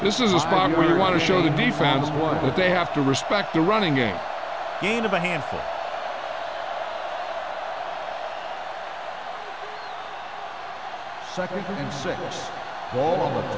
This is a spot where you want to show the defense that they have to respect the running game. Gain of a handful. Second and 6. Ball on the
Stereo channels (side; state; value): both; identical; correlation 1.00